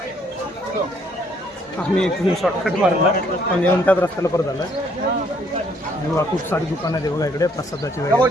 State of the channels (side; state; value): both; normal; correlation 0.66